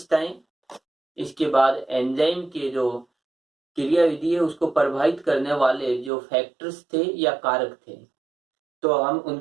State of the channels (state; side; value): drops out; left; at 6.1 s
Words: इसके बाद एंजाइम के जो क्रियाविधि है उसको प्रभावित करने वाले जो फैक्टर्स थे या कारक थे, तो हम